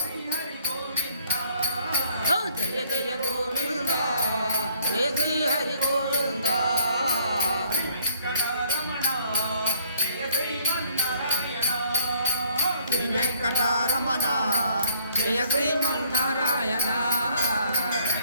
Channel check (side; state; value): both; inverted; correlation -0.63